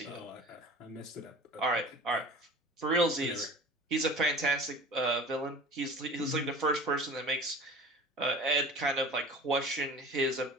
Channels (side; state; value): both; normal; correlation 0.40